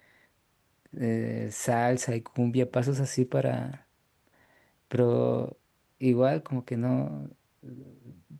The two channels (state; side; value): identical; both; correlation 1.00